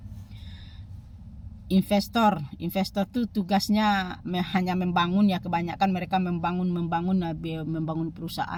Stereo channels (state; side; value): identical; both; correlation 1.00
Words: Investor tuh tugasnya hanya membangun ya, kebanyakan mereka membangun